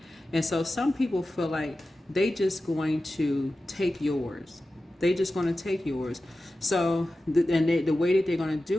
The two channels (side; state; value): both; normal; correlation 0.94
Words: And so some people feel like they just going to take yours. They just going to take yours. So, the way that they're going to